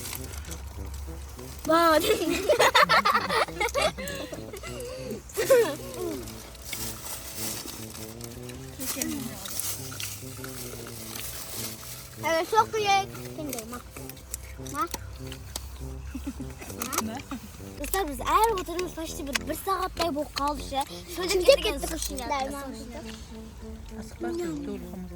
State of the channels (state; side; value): identical; both; correlation 1.00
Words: Bak. Evet çok iyi. Kendi ma. Dostlar biz eğer oturmuş başta bir saatlik bu kaldı şey. Şöyle gittik suşiler. Asıklasın dolu hamur.